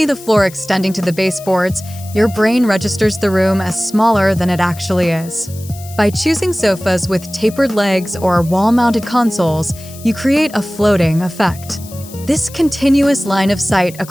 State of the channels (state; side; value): noise; left; hiss, 18 dB below the sound